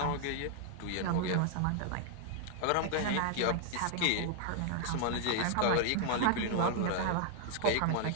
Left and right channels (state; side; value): different; both; correlation 0.00